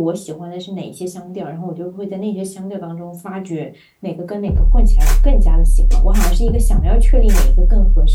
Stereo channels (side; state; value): both; identical; correlation 1.00